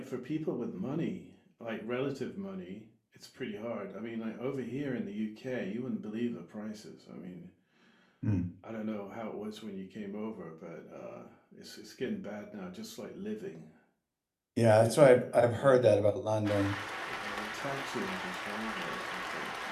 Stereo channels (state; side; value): identical; both; correlation 1.00